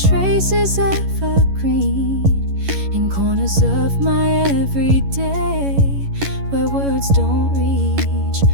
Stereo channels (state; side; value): late; left; 11 ms